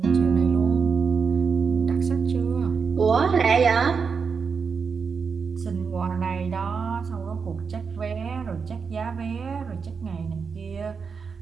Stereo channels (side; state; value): left; quieter; 5.7 dB